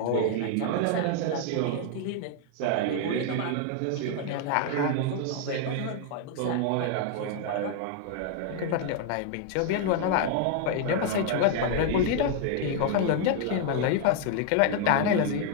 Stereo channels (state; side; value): different; both; correlation 0.00